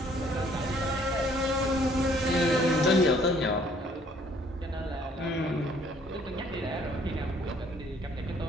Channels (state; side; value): normal; both; correlation 0.61